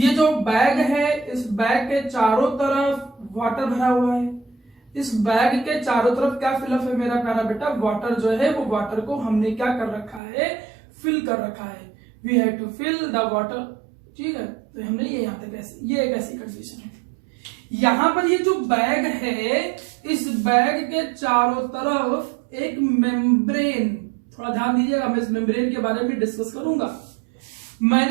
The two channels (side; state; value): left; drops out; at 10.2 s